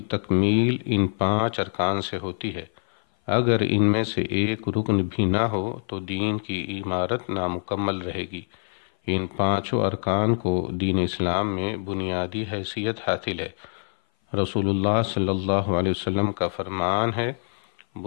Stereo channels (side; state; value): right; silent; 56 dB below the other